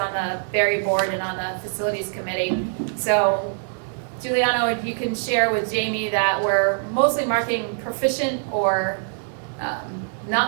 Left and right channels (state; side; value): silent; left; digital silence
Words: the Berry board and on the facilities committee. So Giuliano, if you can share with Jamie that we're mostly marking proficient or